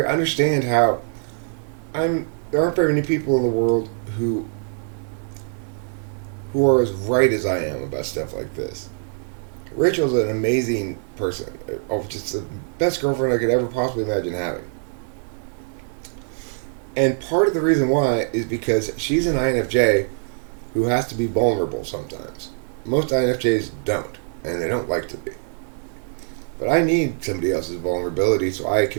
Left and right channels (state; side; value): silent; left; 63 dB below the other